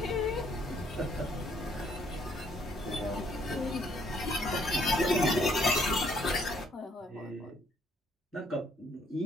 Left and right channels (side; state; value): both; normal; correlation 0.66